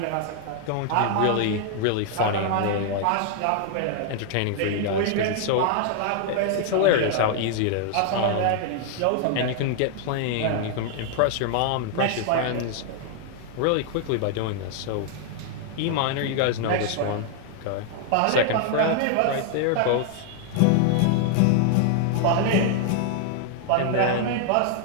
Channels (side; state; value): both; different; correlation 0.00